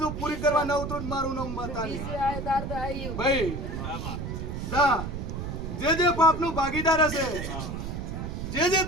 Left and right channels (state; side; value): noise; right; rumble, 5 dB below the sound